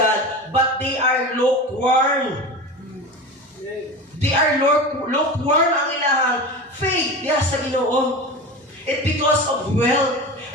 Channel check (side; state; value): both; normal; correlation 0.28